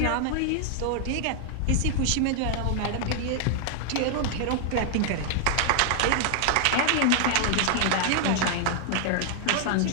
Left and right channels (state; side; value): different; both; correlation 0.00